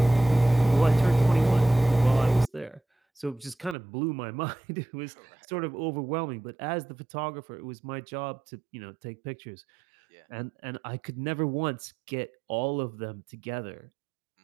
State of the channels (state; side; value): drops out; left; at 3.8 s